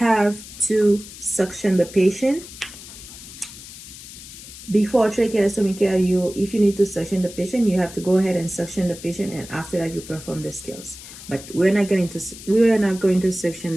to suction the patient, before tracheostomy care, if you need to suction the patient, you have to go ahead and suction the patient, and after that you perform the skills. But we're not going to suction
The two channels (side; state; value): left; noise; hiss, 15 dB below the sound